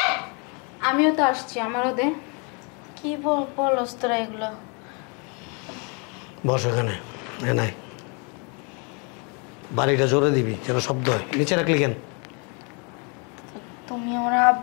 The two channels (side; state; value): right; quieter; 34.2 dB